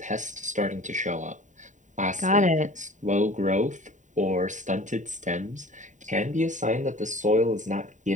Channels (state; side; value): late; left; 0.36 ms